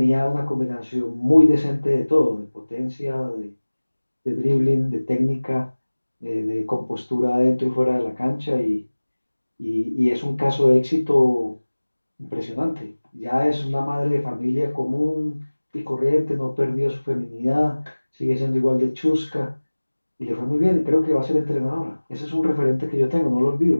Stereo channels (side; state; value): both; inverted; correlation -1.00